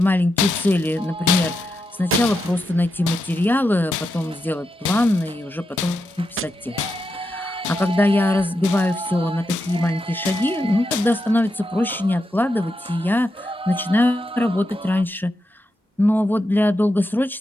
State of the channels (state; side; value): normal; both; correlation 0.86